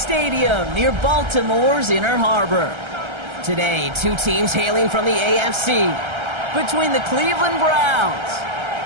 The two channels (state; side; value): late; left; 1.3 ms